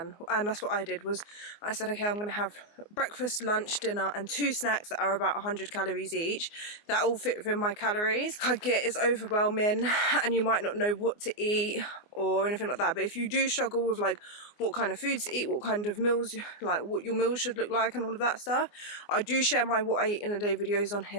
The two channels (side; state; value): right; late; 24 ms